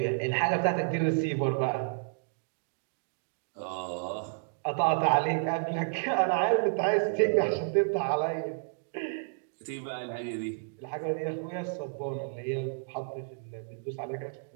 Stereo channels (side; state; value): left; silent; digital silence